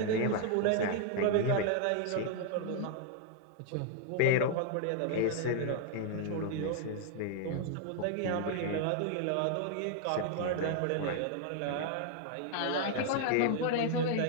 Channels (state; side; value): different; both; correlation 0.00